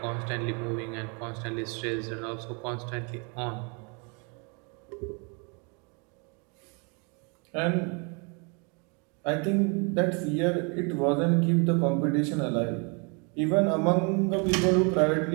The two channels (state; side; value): quieter; left; 34.0 dB